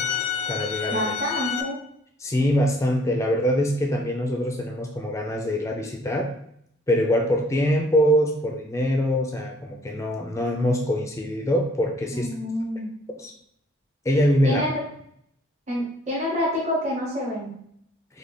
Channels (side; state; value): both; normal; correlation 0.59